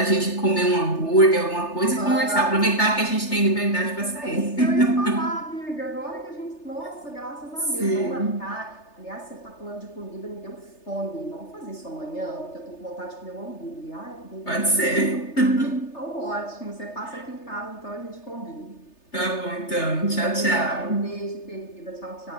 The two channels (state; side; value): late; right; 3.3 ms